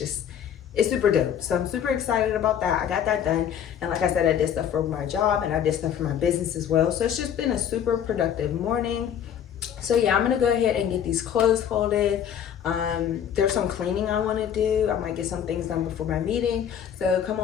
super dope. So I'm super excited about that. I got that done. And like I said, I did stuff for my job and I did stuff for my business as well. So it's just been a super productive morning. So yeah, I'm gonna go ahead and get these clothes folded. There's some cleaning I want to do. I might get some things done before my meeting. So come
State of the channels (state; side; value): quieter; right; 9.0 dB